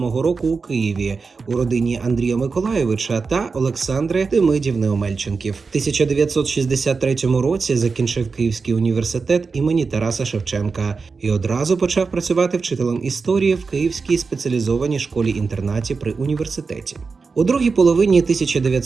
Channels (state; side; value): quieter; left; 4.7 dB